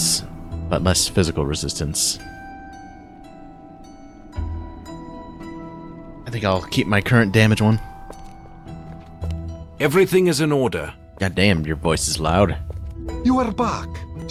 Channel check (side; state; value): both; identical; correlation 1.00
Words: but less physical resistance. I think I'll keep my current damage one. Everything is in order. God damn, your voice is loud. You are back.